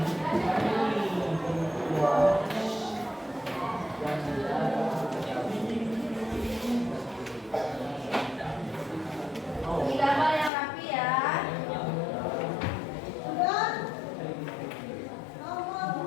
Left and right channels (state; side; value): drops out; right; at 10.5 s